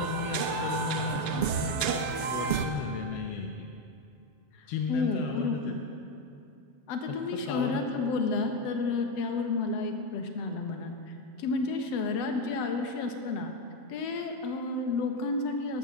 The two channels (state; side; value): late; right; 7.2 ms